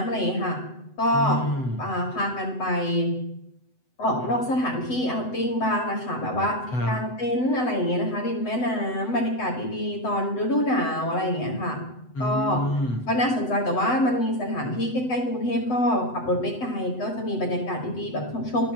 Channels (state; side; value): late; right; 7.9 ms